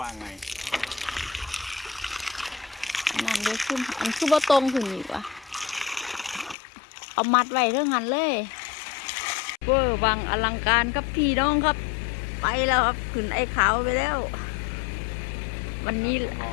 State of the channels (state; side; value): drops out; right; at 6.6 s